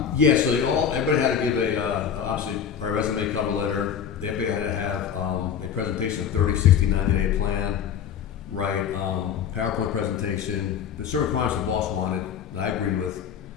Yeah, so everybody had to give obviously our resume, cover letter. Everybody had to have a presentation, 30, 60, 90-day plan, right? PowerPoint presentation. The certain requirements the boss wanted, that I agreed with,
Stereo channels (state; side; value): quieter; right; 8.0 dB